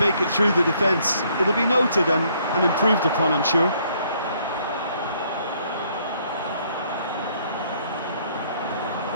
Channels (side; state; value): both; inverted; correlation -0.66